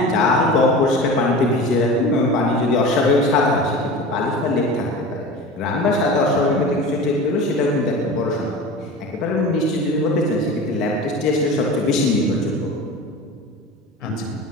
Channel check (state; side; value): normal; both; correlation 0.33